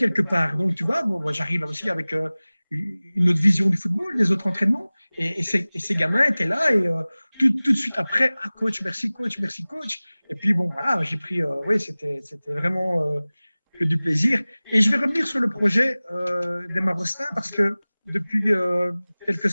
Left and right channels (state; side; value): inverted; both; correlation -0.99